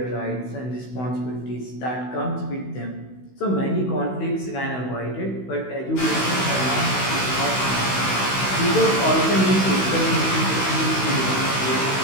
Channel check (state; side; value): late; right; 16 ms